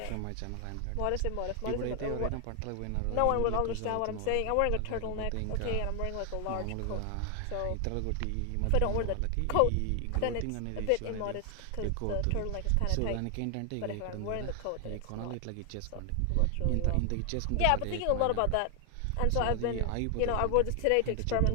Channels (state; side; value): different; both; correlation 0.00